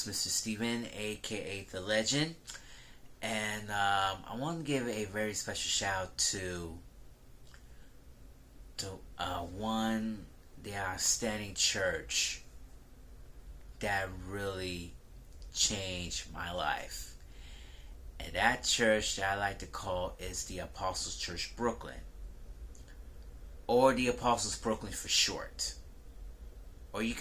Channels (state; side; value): identical; both; correlation 1.00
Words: Mr. Steven, aka The Legend, and I want to give a very special shout out to the outstanding church that really changed my life. And that church that I like to call is the Apostles Church Brooklyn, or the Apostles Brooklyn for short. Or you